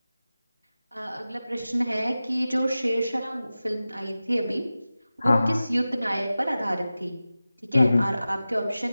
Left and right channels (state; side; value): inverted; both; correlation -0.96